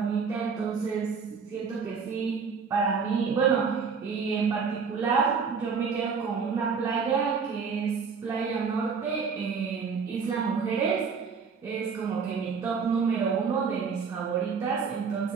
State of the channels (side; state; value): left; quieter; 5.7 dB